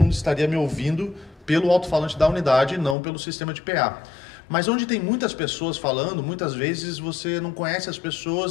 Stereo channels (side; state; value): right; drops out; at 3.0 s